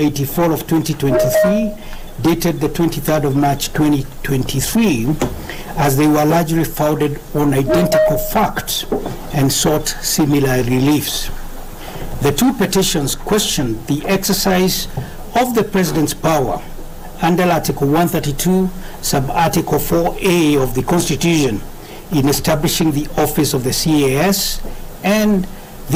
of 2023, dated the 23rd of March 2023, as they were largely founded on identical facts and sought similar reliefs. The two petitions questioned the exercise of the President's power under Article 132, Sub-Article 4A of the Constitution in establishing the office of the CAS and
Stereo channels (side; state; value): both; identical; correlation 1.00